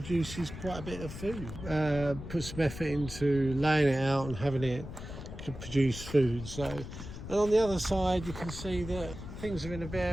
quite a bit of food. Put some effort into laying it out and having it to produce food. So, and on the other side you can see that things are in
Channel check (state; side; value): noise; left; rumble, 10 dB below the sound